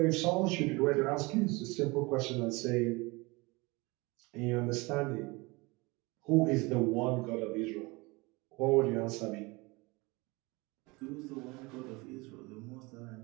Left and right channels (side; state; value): left; quieter; 24.9 dB